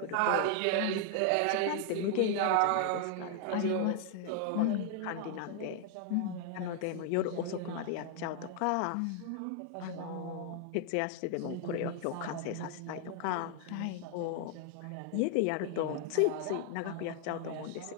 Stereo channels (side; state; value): both; different; correlation 0.00